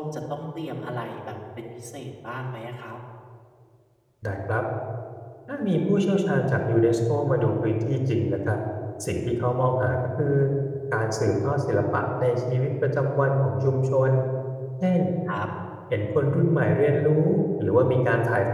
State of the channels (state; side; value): identical; both; correlation 1.00